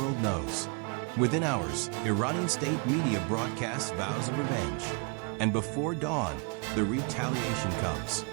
knows. Within hours, Iranian state media broadcasts vows of revenge. And before dawn, the retaliation comes.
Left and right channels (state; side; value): quieter; left; 35.8 dB